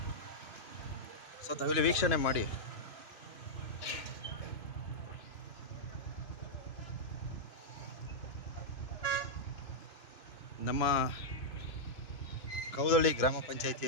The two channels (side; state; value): right; late; 2.7 ms